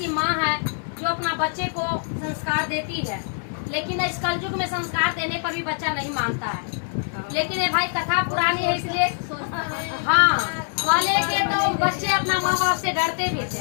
माँ है जो अपना बच्चे को संस्कार देती है, लेकिन इस कलयुग में संस्कार देने पर भी बच्चा नहीं मानता है। लेकिन ये भाई कथा पुरानी है, इसलिए हाँ वाले के तो बच्चे अपना माँ बाप से डरते भी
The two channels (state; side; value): silent; right; digital silence